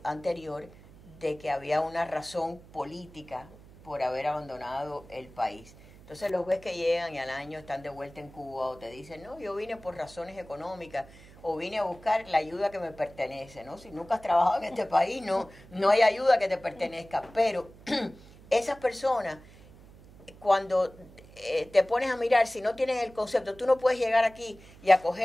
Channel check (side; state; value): right; noise; hum, 22 dB below the sound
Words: anterior, de que había una razón política por haber abandonado el país. Entonces los ves que llegan y al año están de vuelta en Cuba, o te dicen, no, yo vine por razones económicas, o vine a buscar la ayuda que me pertenece, ¿no? Si nunca has trabajado en este país, no hay ayuda que te pertenezca. Pero esas personas, cuando te pones a mirar, si no tienes el concepto, tú no puedes llegar aquí y